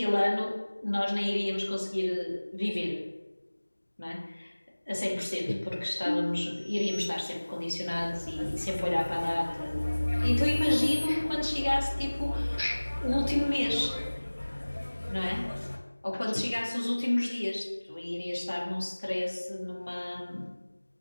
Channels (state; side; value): inverted; both; correlation -1.00